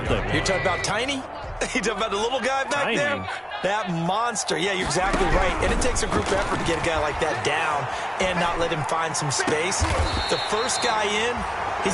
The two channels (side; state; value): both; identical; correlation 1.00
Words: You're talking about Tiny? You talking about the little guy back Tiny. there? That monster. Yeah, you're exactly right. And it takes a group effort to get a guy like that down and not let him find some space. The first guy in,